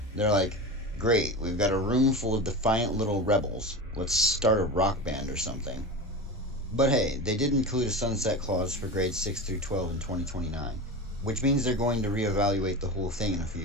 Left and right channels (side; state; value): both; normal; correlation 0.26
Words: They're like, great, we've got a room full of defiant little rebels. Let's start a rock band or something. But hey, they did include a sunset clause for grades 6 through 12 in 2029, which means they're going to reevaluate the whole thing in a few